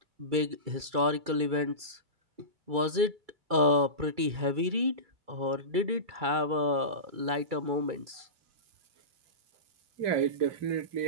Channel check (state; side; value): late; left; 2.3 ms